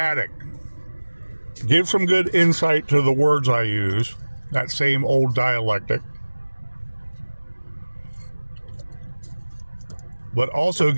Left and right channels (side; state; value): both; inverted; correlation -1.00